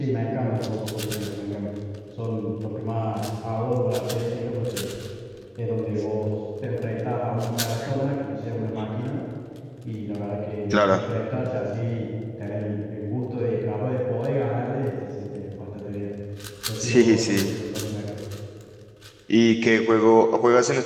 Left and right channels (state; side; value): identical; both; correlation 1.00